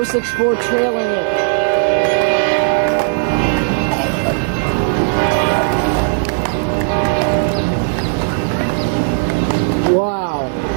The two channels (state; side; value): silent; left; digital silence